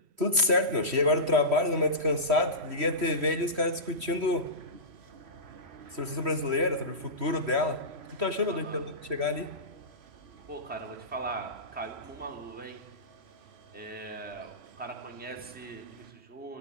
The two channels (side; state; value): left; late; 3.1 ms